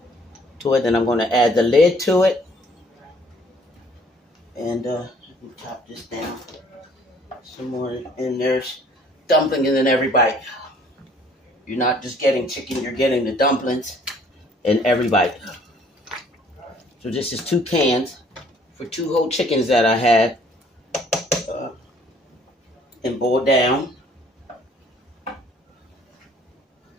to it. Then I'm going to add the lid to it. And chop this down some more. And there's dumplings in every bite. You're not just getting chicken, you're getting the dumplings in every bite. So this is 2 cans for 2 whole chickens that I had and boiled down.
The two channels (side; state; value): both; normal; correlation 0.59